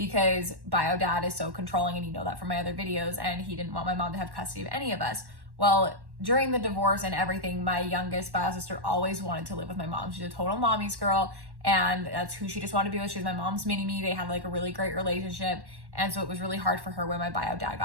bio dad is so controlling, and you know that from my other videos, and he didn't want my mom to have custody of any of us. Well, during the divorce and everything, my youngest bio sister always wanted to live with my mom. She's a total mommy's girl, and that's who she just wanted to be with. She was my mom's mini-me. They had like a really great relationship, and so it was really hard for her when my bio dad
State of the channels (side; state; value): left; late; 1.1 ms